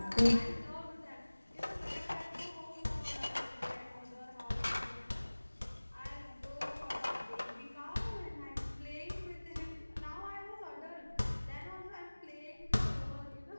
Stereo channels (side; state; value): both; inverted; correlation -1.00